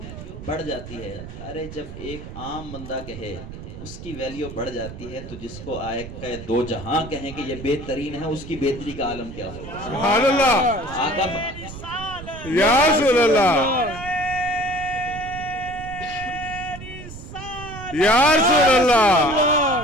بڑھ جاتی ہے. ارے جب ایک عام بندہ کہے اس کی ویلیو بڑھ جاتی ہے, تو جس کو آئے کہ دو جہاں کہیں کہ یہ بہترین ہے, اس کی بہتری کا عالم کیا ہو؟ سبحان اللہ. آقا یا رسول اللہ, یا رسول اللہ,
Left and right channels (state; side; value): noise; right; rumble, 12 dB below the sound